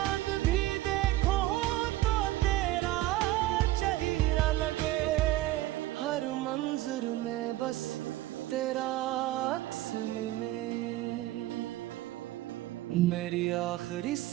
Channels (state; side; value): quieter; left; 16.2 dB